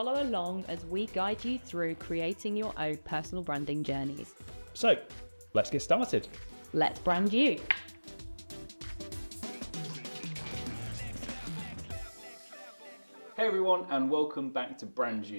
along as we guide you through creating your own personal branding journeys. So, let's get started. Let's brand you. Hey everyone, and welcome back to Brand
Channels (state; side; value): inverted; both; correlation -1.00